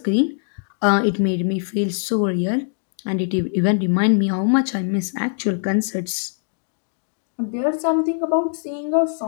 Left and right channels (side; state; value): right; silent; digital silence